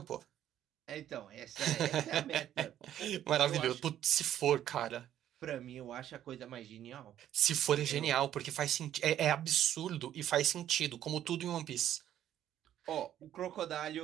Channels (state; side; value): quieter; left; 11.3 dB